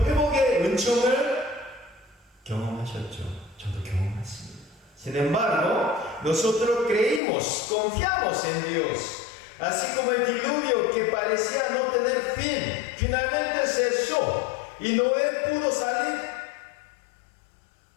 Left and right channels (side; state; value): right; drops out; at 7.2 s